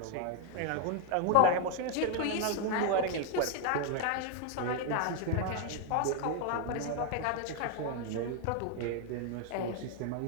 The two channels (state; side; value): different; both; correlation 0.00